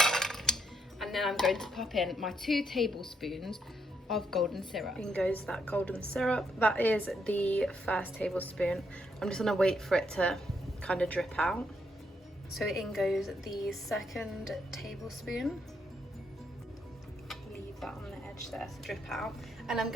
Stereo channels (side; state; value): both; normal; correlation 0.76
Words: and then I'm going to pop in my 2 tablespoons of golden syrup. In goes that golden syrup. That is the first tablespoon. I'm just going to wait for it to kind of drip out. So in goes the second tablespoon. Leave that on the edge there to drip out, and I'm